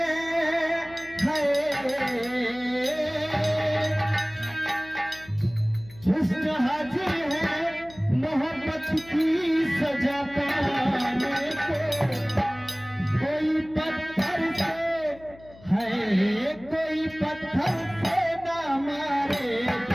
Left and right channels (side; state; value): left; noise; hum, 22 dB below the sound